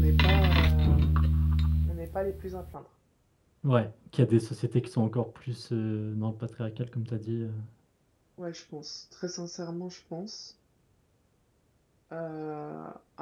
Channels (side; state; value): both; identical; correlation 1.00